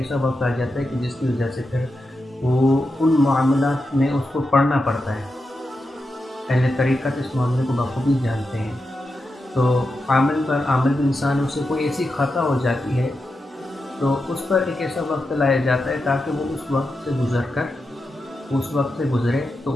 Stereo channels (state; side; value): normal; both; correlation 0.88